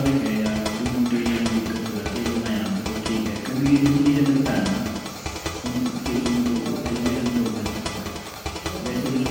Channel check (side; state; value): both; identical; correlation 1.00